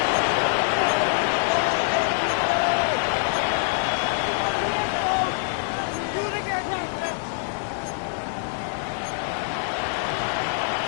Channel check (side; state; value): right; silent; digital silence